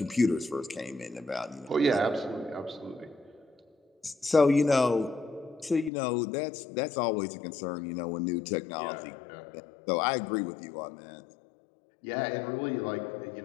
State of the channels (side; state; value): right; drops out; at 5.9 s